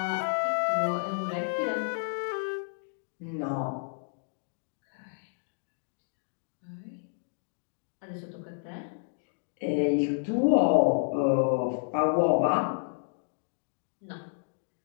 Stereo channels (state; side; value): silent; right; digital silence